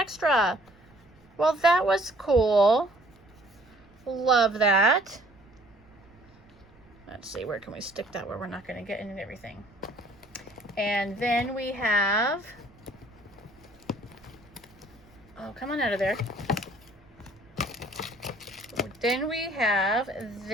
Well, that was cool. Love that. Let's see, where can we stick that where we're not going to get into everything? And then we have, oh, come on out of there. Then we have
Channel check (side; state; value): right; noise; rumble, 27 dB below the sound